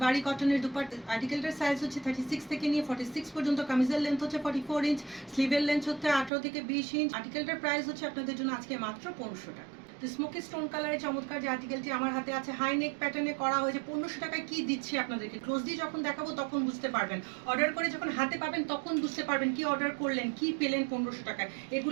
কটনের দুপাট্টা। আর্টিকেলটার সাইজ হচ্ছে 36 থেকে নিয়ে 46 পর্যন্ত। কামিজের লেন্থ হচ্ছে 44 ইঞ্চ, স্লিভের লেন্থ হচ্ছে 18 থেকে 20 ইঞ্চ। আর্টিকেলটার প্রাইস হচ্ছে আপনাদের জন্য আজকে মাত্র 1500 টাকা। তো স্মোকি স্টোন কালারের চমৎকার যে আর্টিকেলটি আমার হাতে আছে হাই নেক প্যাটার্নে করা হয়েছে। 1500 টাকায় কি দিচ্ছি আপনাদেরকে, ক্লোজলি যখন দেখাবো তখন বুঝতে পারবেন, অর্ডার করে যখন হাতে পাবেন তখন বুঝতে পারবেন কি অর্ডার করলেন, কি পেলেন 1500 টাকায়।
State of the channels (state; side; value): drops out; left; at 6.3 s